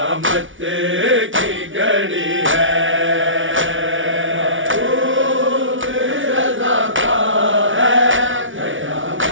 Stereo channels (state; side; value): late; left; 0.56 ms